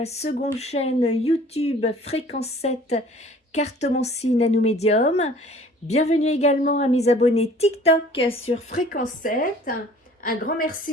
seconde chaîne YouTube Fréquence 7 Cartomancie Nano Médium. Bienvenue également à mes abonnés TikTok sur Fréquence 7. Un grand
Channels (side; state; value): both; normal; correlation 0.51